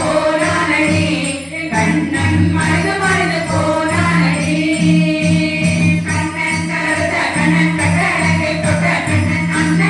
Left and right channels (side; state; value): both; identical; correlation 1.00